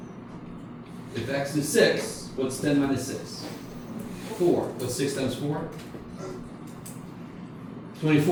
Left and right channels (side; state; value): both; identical; correlation 1.00